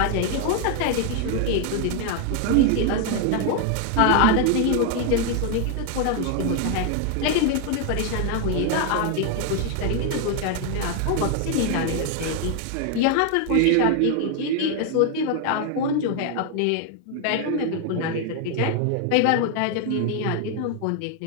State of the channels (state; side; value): different; both; correlation 0.00